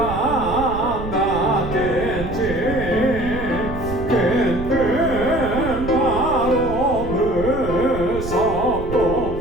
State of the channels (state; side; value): noise; right; rumble, 9 dB below the sound